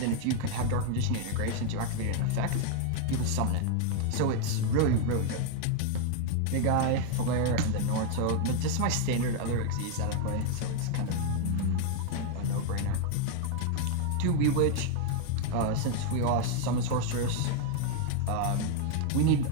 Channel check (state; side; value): different; both; correlation 0.00